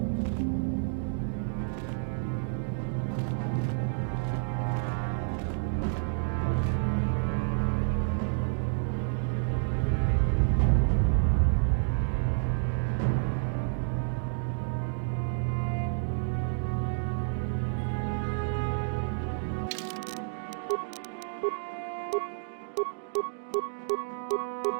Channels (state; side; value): silent; left; digital silence